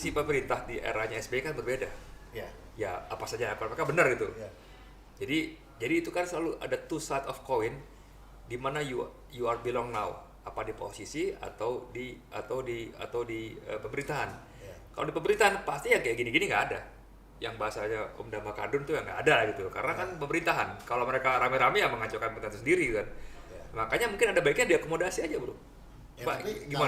pemerintah di eranya SBY kan berbeda. Ya. Ya apa saja kalau mereka benar gitu. Ya. Jadi itu kan selalu ada two side of coin, di mana you are belong now, apa di posisi atau di pemerintahan. Ya. Kalau di pemerintahan pasti ya kayak gini-gini nggak ada. Yang bahasanya Om Dhamma Kadrun tuh ya nggak ada gitu, karena kan pemerintahan. Kalau mereka rame-rame ya mengacaukan pemerintahan sendiri kan. Ya. Makanya mungkin ada baiknya diakomodasi aja bro. Ya, Pak, tapi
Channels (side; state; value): both; identical; correlation 1.00